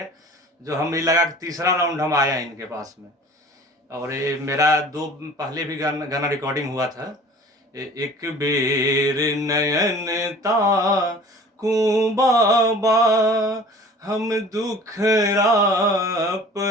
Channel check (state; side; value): normal; both; correlation 0.45